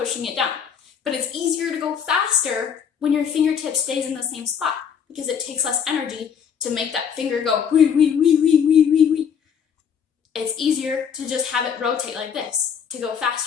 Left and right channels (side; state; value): right; quieter; 7.4 dB